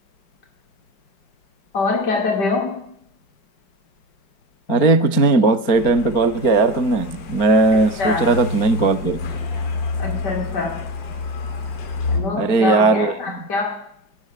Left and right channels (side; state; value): right; late; 4.5 ms